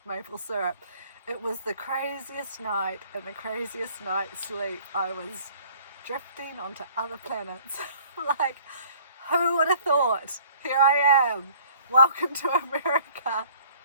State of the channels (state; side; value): inverted; both; correlation -0.54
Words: maple syrup. It was the craziest night and the craziest night's sleep. I was drifting onto other planets. Like, who would have thought? Here I am. Welcome to America.